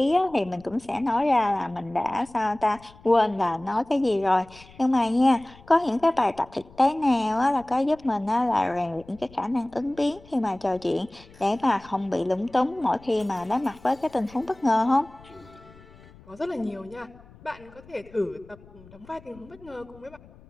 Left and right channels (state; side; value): noise; left; rumble, 23 dB below the sound